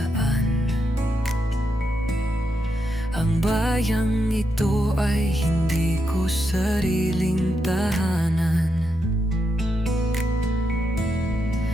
Ang bayang ito ay hindi ko sariling tahanan.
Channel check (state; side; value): normal; both; correlation 0.83